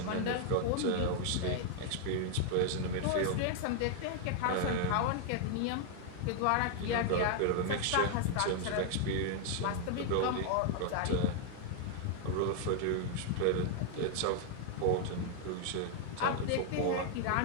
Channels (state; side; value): different; both; correlation 0.00